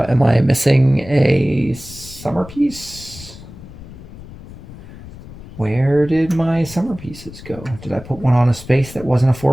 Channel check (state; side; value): noise; left; rumble, 16 dB below the sound